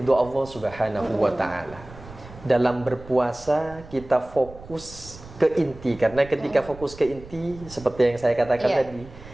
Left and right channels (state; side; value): noise; right; rumble, 18 dB below the sound